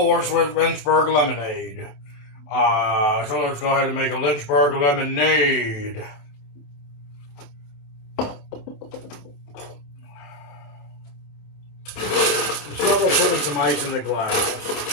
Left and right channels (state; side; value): late; right; 28 ms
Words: with Lynchburg Lemonade. So let's go ahead and make a Lynchburg Lemonade. So we're putting some ice in the glass.